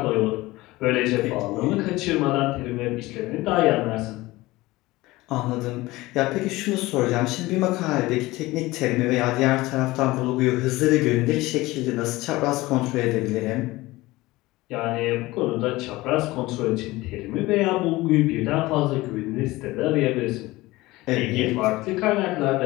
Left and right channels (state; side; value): quieter; right; 19.5 dB